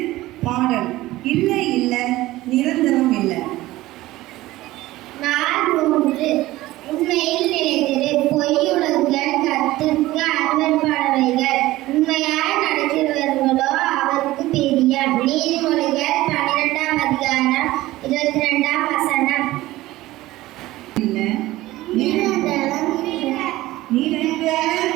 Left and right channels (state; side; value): quieter; left; 17.3 dB